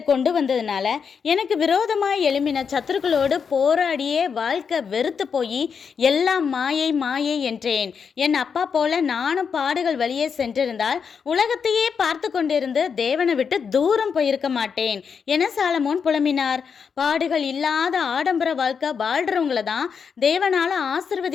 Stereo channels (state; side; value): quieter; right; 6.3 dB